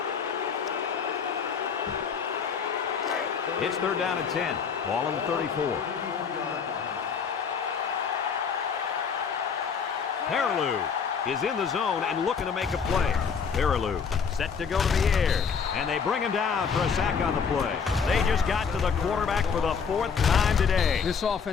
It's 3rd down and 10. Ball on the 34. Peterson is in the zone and looking to make a play. Peterson set to go to the air, and they bring him down for a sack on the play. They just got to the quarterback for the 4th time today. This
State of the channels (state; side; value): quieter; right; 6.3 dB